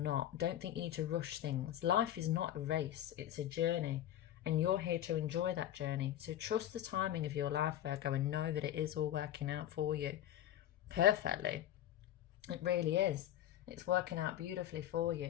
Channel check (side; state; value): right; quieter; 12.0 dB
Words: Don't think you need to rush things. Life is not a race, it's a journey, and you're here to enjoy that journey. So trust the timing of your life, Virgo, and know that it is all working out for you perfectly. It really is. It's working out beautifully for